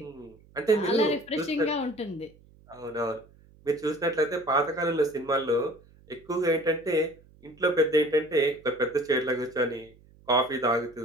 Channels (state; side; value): noise; right; hum, 27 dB below the sound